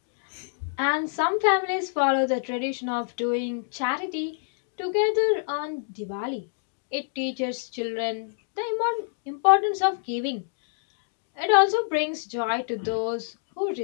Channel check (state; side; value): silent; right; digital silence